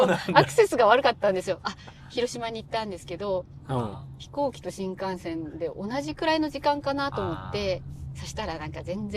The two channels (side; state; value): both; identical; correlation 1.00